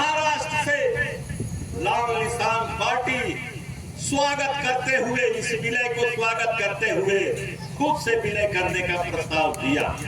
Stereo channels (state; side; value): identical; both; correlation 1.00